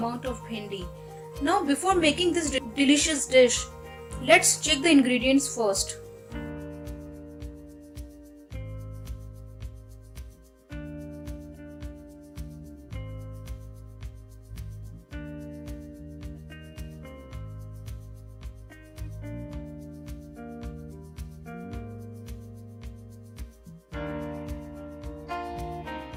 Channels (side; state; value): both; identical; correlation 1.00